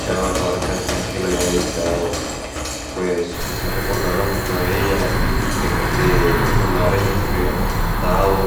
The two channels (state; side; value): identical; both; correlation 1.00